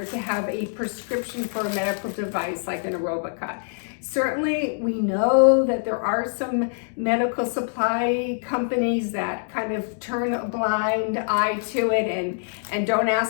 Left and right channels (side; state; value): right; silent; digital silence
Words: to have a prescription for a medical device like an Aerobika. Certainly, we know that there are some medical supply companies that kind of turn a blind eye to it and don't